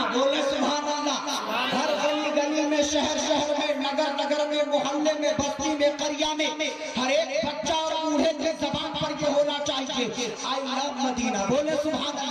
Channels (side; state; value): both; identical; correlation 1.00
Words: بولے سبحان اللہ۔ ہر گلی گلی میں، شہر شہر میں، نگر نگر میں، محلے میں، بستی میں، قریہ میں ہر ایک بچہ اور بوڑھے کی زبان پر یہ ہونا چاہیے آئی لو مدینہ۔ بولے سبحان